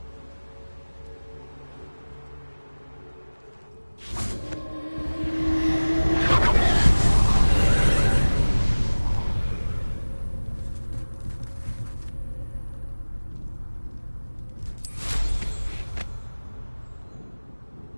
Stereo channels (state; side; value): inverted; both; correlation -1.00